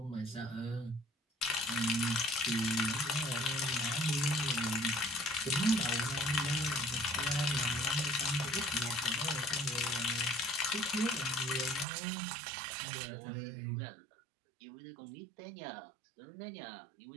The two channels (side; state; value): left; drops out; at 11.9 s